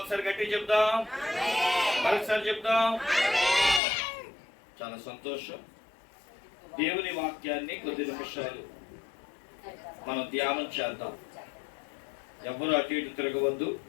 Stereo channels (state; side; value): drops out; right; at 3.8 s